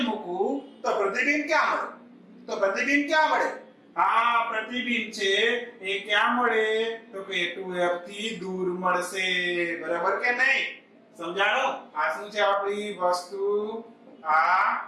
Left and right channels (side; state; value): both; identical; correlation 1.00